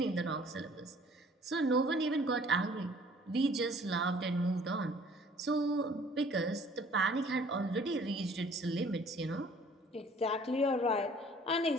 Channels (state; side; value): normal; both; correlation 0.55